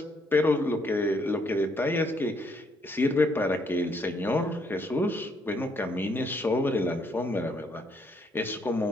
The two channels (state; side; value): normal; both; correlation 0.71